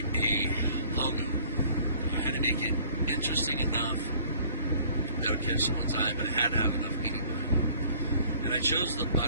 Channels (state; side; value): inverted; both; correlation -0.54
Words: a logo. I had to make it interesting enough that would catch someone's eye, but it had to have enough meaning behind it. And I chose the